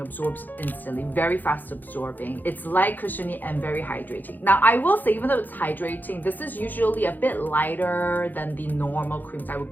absorbs instantly, very fast absorbing. It's light, cushiony, and very hydrating. Now, I will say, even though it's hydrating, this is usually a bit lighter than the normal creams I would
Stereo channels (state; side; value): late; right; 0.086 ms